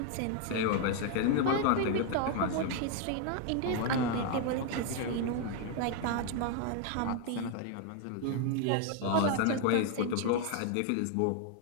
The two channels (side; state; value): both; different; correlation 0.00